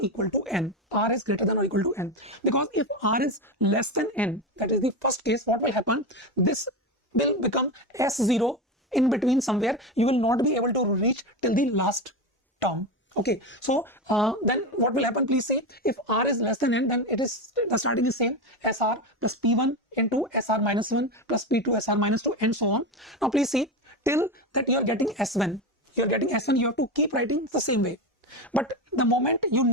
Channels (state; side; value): normal; both; correlation 0.17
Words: equal to n. R is greater than or equal to n. Because if r is less than n, that is the first case, what will happen? This will become S0 in between somewhere. You will not be able to reach till the last term. Okay, so then what will happen? Please see, if r is less than n, then it is the starting is same, SR plus P1 into SR minus 1 plus P2 SR minus 2 and so on. Now please see, till that you are getting S1, you have to keep writing the same way. But the moment you